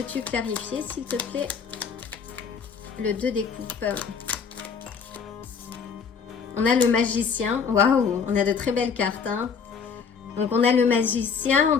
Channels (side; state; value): right; quieter; 6.2 dB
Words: clarifier, s'il te plaît? Le 2 des coupes. On a le magicien, waouh, on a de très belles cartes, hein. Donc on a le magicien, on